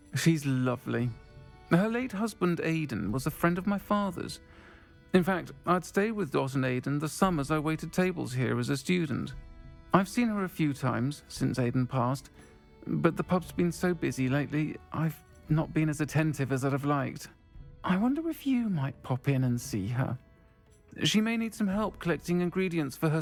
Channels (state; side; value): identical; both; correlation 1.00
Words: She's lovely. Her late husband Aidan was a friend of my father's. In fact, I'd stayed with Dot and Aidan the summers I waited tables here as a student. I've seen her a few times since Aidan passed, but the pub's been so busy lately, I've not been as attentive as I'd have liked. I wonder if you might pop in and see her. She may need some help collecting ingredients for her